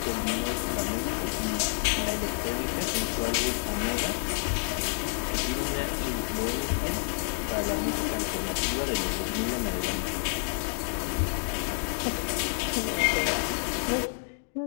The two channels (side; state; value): right; silent; digital silence